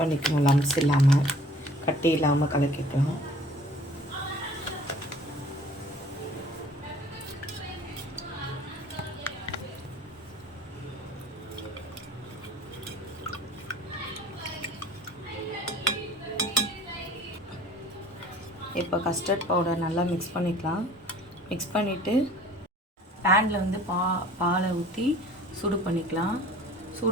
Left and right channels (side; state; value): both; normal; correlation 0.49